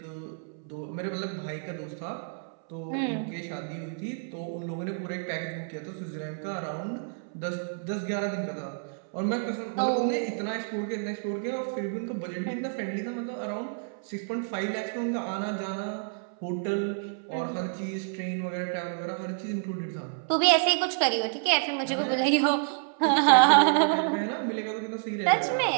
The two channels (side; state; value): left; silent; 58 dB below the other